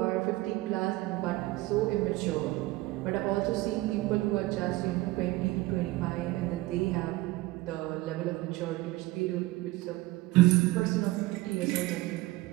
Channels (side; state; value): left; quieter; 19.4 dB